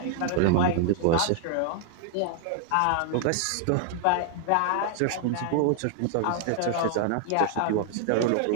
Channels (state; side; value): different; both; correlation 0.00